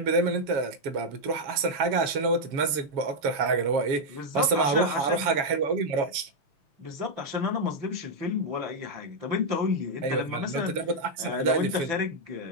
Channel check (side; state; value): left; late; 7.2 ms